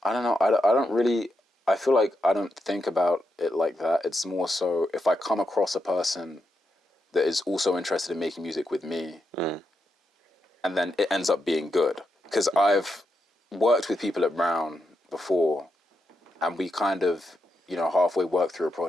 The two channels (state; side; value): normal; both; correlation 0.85